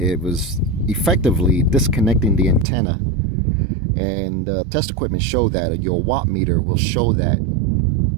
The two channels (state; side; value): drops out; left; at 2.7 s